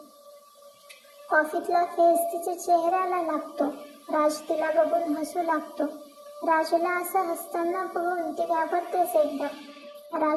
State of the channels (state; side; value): identical; both; correlation 1.00